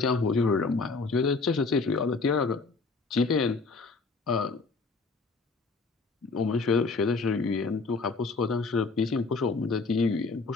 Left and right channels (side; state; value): right; quieter; 4.0 dB